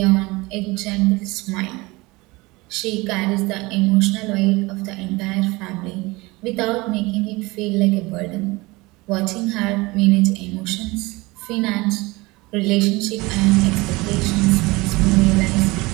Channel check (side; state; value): left; quieter; 22.8 dB